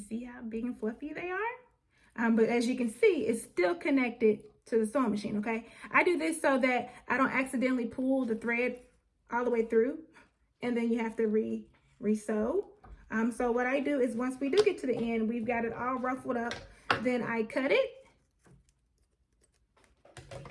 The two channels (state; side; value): identical; both; correlation 1.00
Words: see how big and fluffy they are. But as you can see, it's still connected to the sewing machine, okay? I do this so that I don't accidentally pull the thread all the way through and then you have to re-sew. So what I do is once we do get to the end, we've got it all ruffled up, then I cut it,